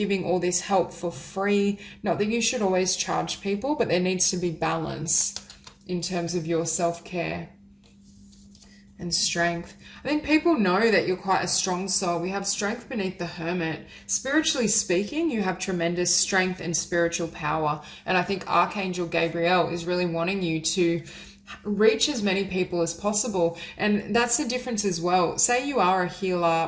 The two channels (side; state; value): both; identical; correlation 1.00